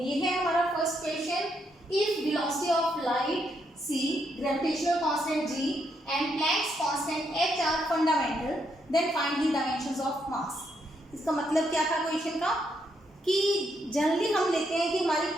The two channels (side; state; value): both; normal; correlation 0.77